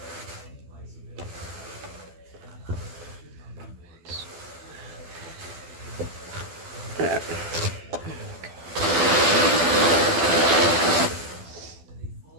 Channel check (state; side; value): late; left; 12 ms